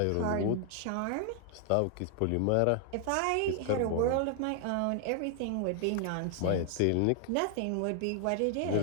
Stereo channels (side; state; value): both; different; correlation 0.00